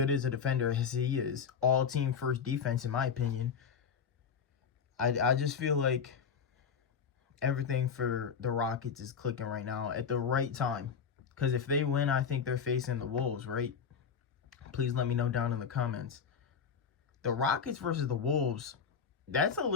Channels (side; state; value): right; quieter; 6.7 dB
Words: as a defender as he is. All-team first defense, in my opinion. I just feel like everything for the Rockets is clicking right now at the right time. Because if they win, I think they're facing the Wolves, right? Please let me know down in the comments. The Rockets versus the Wolves, that's a